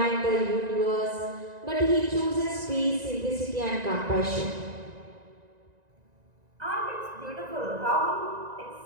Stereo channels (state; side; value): late; left; 1.9 ms